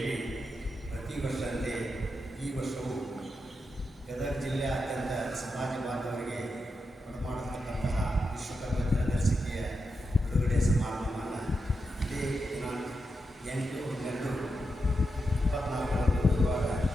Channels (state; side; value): normal; both; correlation 0.86